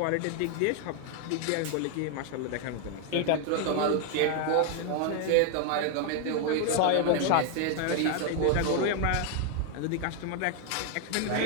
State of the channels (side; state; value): both; different; correlation 0.01